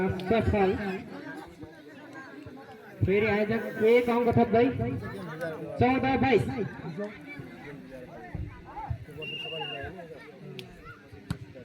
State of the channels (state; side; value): identical; both; correlation 1.00